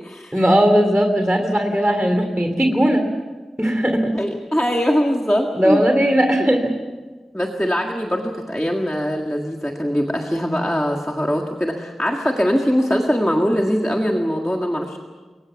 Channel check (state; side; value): normal; both; correlation 0.95